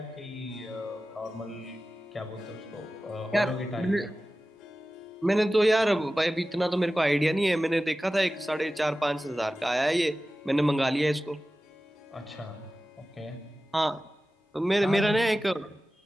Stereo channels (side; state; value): both; normal; correlation 0.95